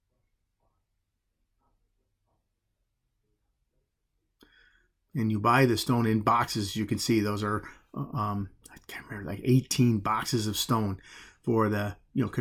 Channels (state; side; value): identical; both; correlation 1.00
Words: And you buy the stone in boxes. You can see those are I can't remember, like 18 boxes of stone for the